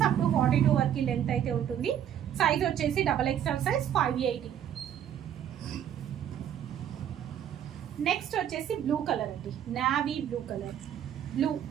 అప్ టు 42 వరకు లెంత్ అయితే ఉంటుంది. సైజ్ వచ్చేసి XXL సైజ్ 580. నెక్స్ట్ వచ్చేసి బ్లూ కలర్ అండి. Navy blue colour.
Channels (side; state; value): left; quieter; 10.0 dB